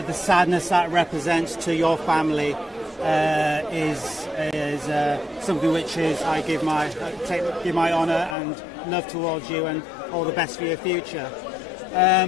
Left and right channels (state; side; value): drops out; right; at 8.3 s